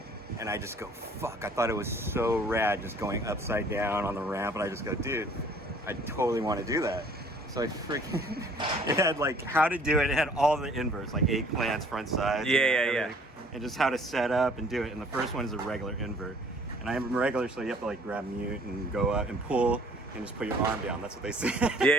And I just go, fuck, I thought it was so rad just going upside down on the ramp, and I just go, dude, I totally want to do that. So I freaking, it had like how to do it. It had all the inverts, like eggplants, front sides. Yeah. And just how to set up and do it. And the first one is a regular invert. And I'm regular, so you have to like grab mute and go up and pull and just put your arm down. That's what they say.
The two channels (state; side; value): normal; both; correlation 0.55